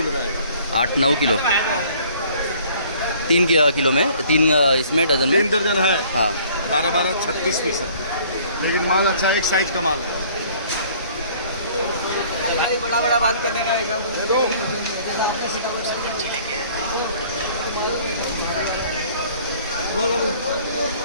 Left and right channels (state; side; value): inverted; both; correlation -0.55